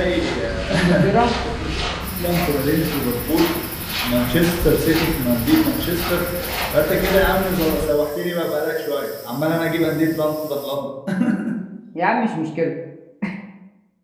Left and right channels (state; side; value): identical; both; correlation 1.00